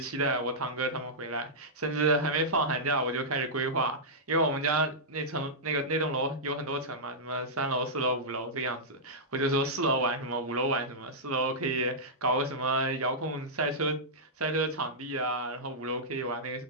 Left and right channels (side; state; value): both; normal; correlation -0.12